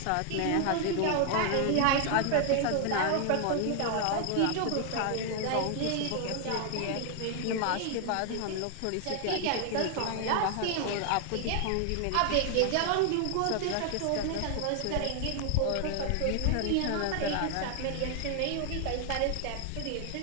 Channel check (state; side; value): different; both; correlation 0.00